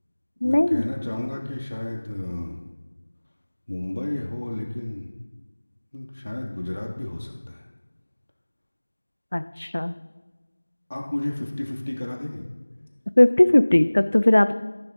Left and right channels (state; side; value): inverted; both; correlation -1.00